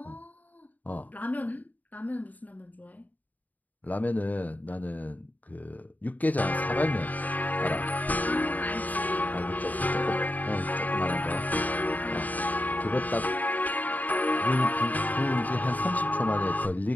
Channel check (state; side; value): late; right; 0.079 ms